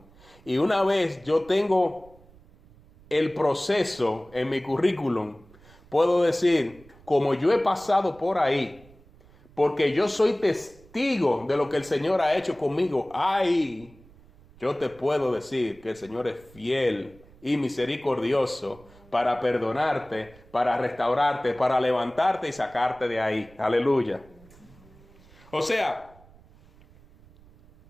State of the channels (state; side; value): noise; right; rumble, 25 dB below the sound